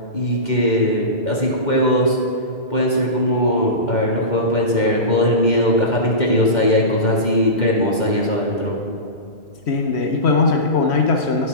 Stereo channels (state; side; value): late; right; 2.1 ms